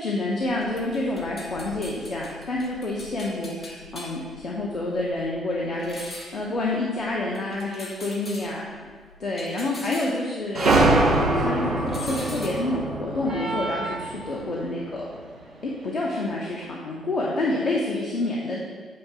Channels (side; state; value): both; normal; correlation 0.61